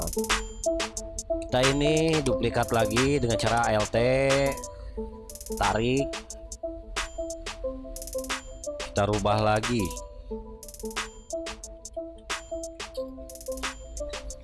kita ini duplikat lagi dengan cara ALT, tarik, kita rubah lagi.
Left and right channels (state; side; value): identical; both; correlation 1.00